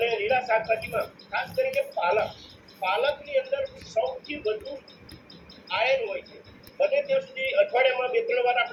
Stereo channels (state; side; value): identical; both; correlation 1.00